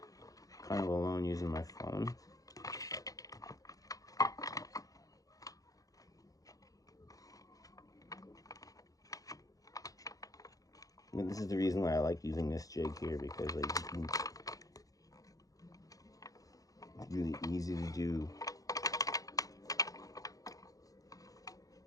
kind of alone using my phone. And this is the reason why I like using this jig here, because like it's really easy to do.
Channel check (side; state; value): right; late; 0.17 ms